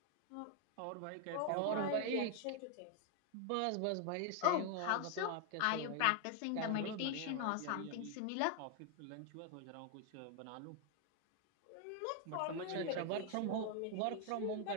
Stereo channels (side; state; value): both; different; correlation 0.00